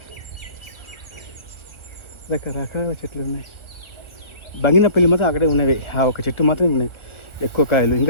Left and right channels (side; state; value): right; late; 1.4 ms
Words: రకరకాల చెట్లు ఉన్నాయి. బంగినపల్లి మాత్రం అక్కడే ఉన్నవి. ఆ ఒక చెట్టు మాత్రం ఉన్నాయి ఎక్కువ కాయలు.